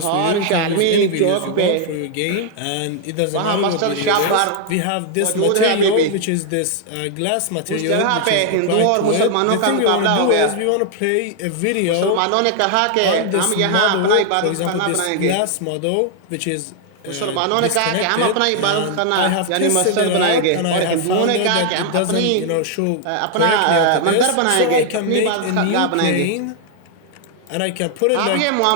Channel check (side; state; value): both; different; correlation 0.00